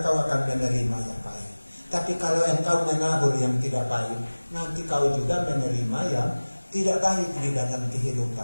akan menerima yang baik. Tapi kalau engkau menabur yang tidak baik, nanti kau juga menerima yang tidak baik di dalam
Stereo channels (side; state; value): both; inverted; correlation -1.00